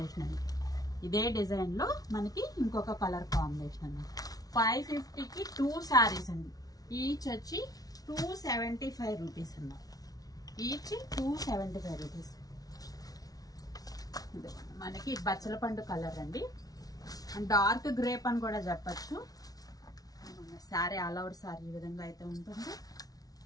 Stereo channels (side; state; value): right; late; 0.18 ms